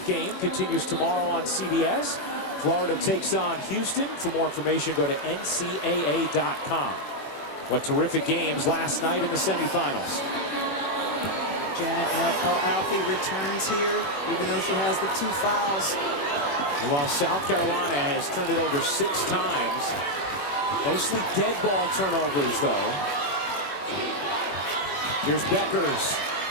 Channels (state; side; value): late; right; 21 ms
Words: game continues tomorrow on CBS. Florida takes on Houston. For more information, go to ncaa.com. What terrific games last night in the semifinals. Janet El-Alfi returns here, even though she has the 2 fouls. And while South Carolina has turned it over 6 times, mostly dead ball turnovers, though. Here's Bueckers.